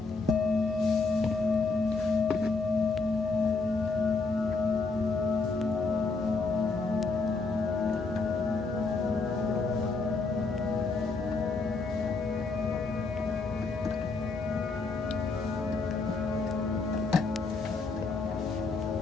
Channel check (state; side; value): quieter; right; 4.0 dB